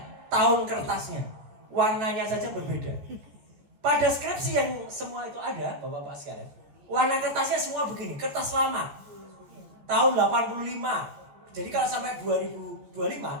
tahun kertasnya, warnanya saja berbeda. Pada skripsi yang semua itu ada, Bapak-bapak sekalian, warna kertasnya semua begini, kertas lama, tahun 85. Jadi kalau sampai 2025,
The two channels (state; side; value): late; left; 14 ms